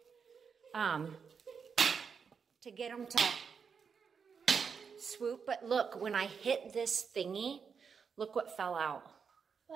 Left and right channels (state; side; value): quieter; left; 6.2 dB